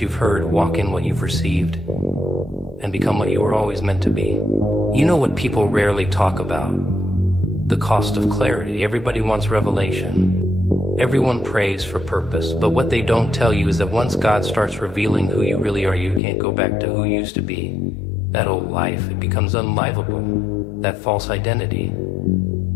you've heard, walk in what you've received, and become what you were always meant to be. You know what people rarely talk about? The cost of clarity. Everybody wants revelation. Everyone prays for purpose, but what they don't tell you is that once God starts revealing who you really are, you can't go back to who you used to be. That old life, it becomes unlivable. That false identity.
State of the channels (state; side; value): drops out; right; at 16.2 s